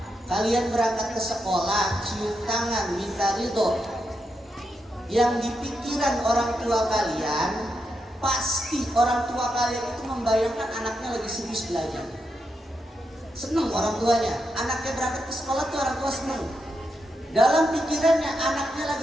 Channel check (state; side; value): normal; both; correlation 0.84